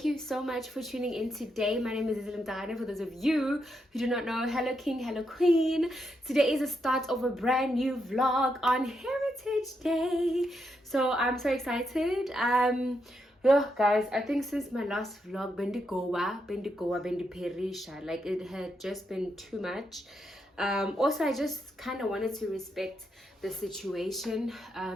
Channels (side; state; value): both; normal; correlation 0.81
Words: you so much for tuning in today. My name is Mdana. For those of you who do not know, hello king, hello queen. Today is the start of a brand new vlog on Heritage Day, so I'm so excited. Yeah, guys, I think since my last vlog, bendi perisha, like it had just been too much. Also, I just kind of wanted to respect the situation